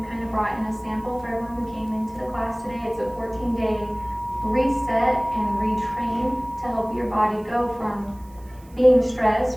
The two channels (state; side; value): noise; right; hiss, 28 dB below the sound